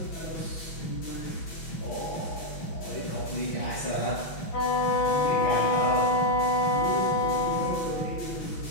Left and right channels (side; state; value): right; late; 6.1 ms